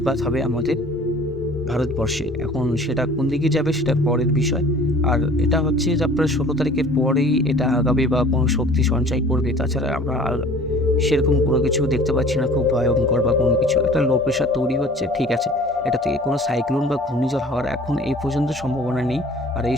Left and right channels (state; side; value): normal; both; correlation 0.48